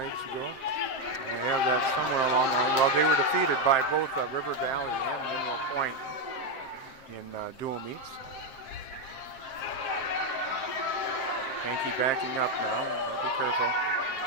ago. I have that somewhere along the line. Well, they were defeated by both River Valley and Mineral Point in dual meets. Hankey backing up now. Be careful.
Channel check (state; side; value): late; right; 7.6 ms